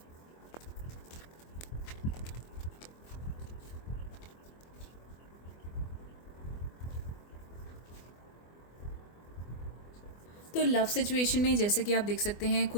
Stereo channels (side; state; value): right; late; 24 ms